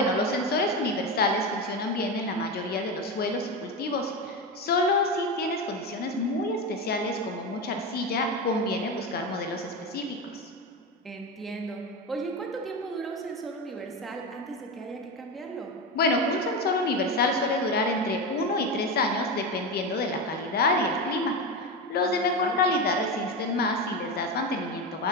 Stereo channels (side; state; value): both; normal; correlation 0.18